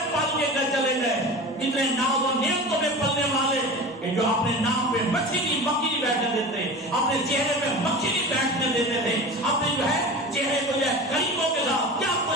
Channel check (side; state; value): both; normal; correlation 0.33